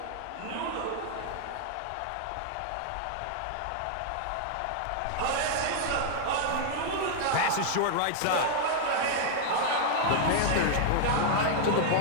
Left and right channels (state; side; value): different; both; correlation -0.01